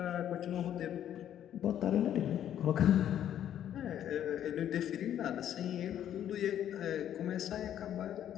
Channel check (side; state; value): right; quieter; 10.6 dB